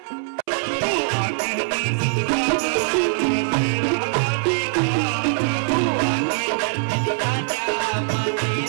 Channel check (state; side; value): silent; left; 64 dB below the other